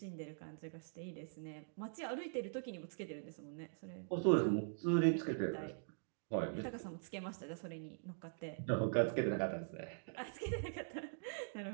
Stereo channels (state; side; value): silent; left; digital silence